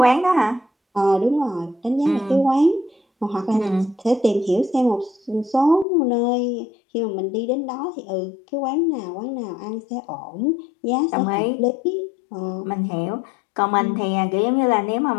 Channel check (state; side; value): drops out; right; at 5.9 s